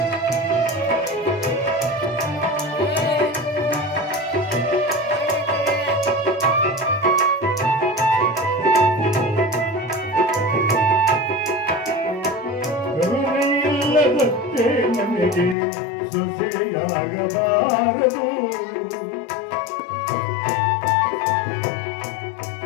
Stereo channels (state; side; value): drops out; right; at 15.6 s